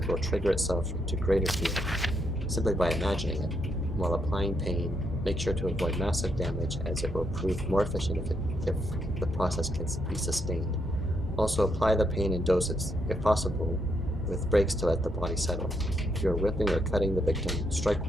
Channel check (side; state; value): both; normal; correlation 0.77